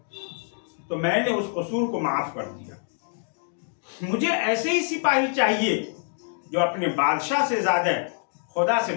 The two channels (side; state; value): right; silent; 61 dB below the other